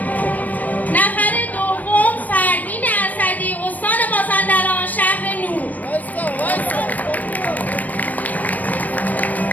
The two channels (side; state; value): right; late; 0.078 ms